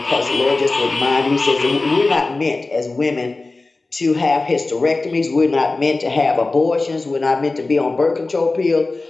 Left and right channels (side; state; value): right; quieter; 3.4 dB